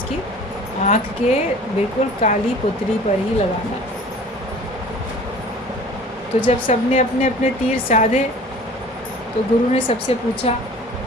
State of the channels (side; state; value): both; normal; correlation 0.45